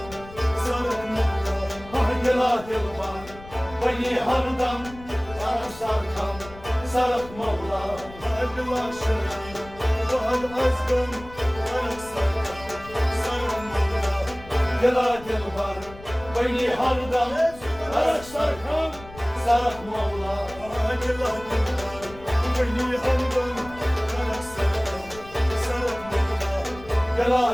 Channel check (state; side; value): noise; left; rumble, 18 dB below the sound